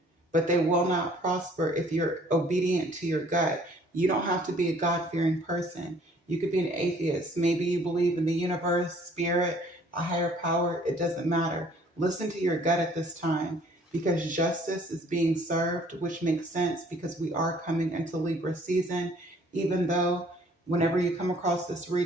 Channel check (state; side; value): normal; both; correlation 0.57